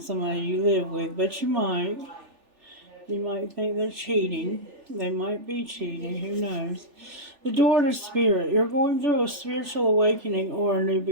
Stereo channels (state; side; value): late; left; 3.4 ms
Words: you live with, but you might. You might think they're cheating. They might be cheating. Who knows? The door to spirit. You're going through a spiritual awakening or a new